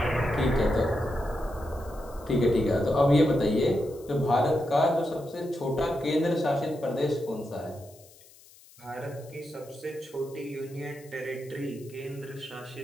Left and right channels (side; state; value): left; noise; hiss, 24 dB below the sound